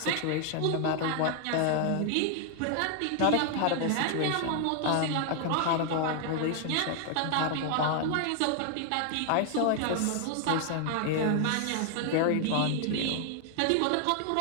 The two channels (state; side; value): different; both; correlation 0.00